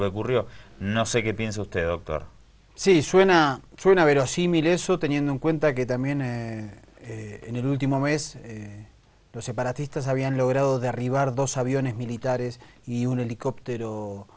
ocurrió. No sé qué piensa usted, doctor. Sí, suena verosímil eso, teniendo en cuenta que también en el último mes los separatistas habían logrado derribar 2 aviones militares y un helicóptero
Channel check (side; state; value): both; identical; correlation 1.00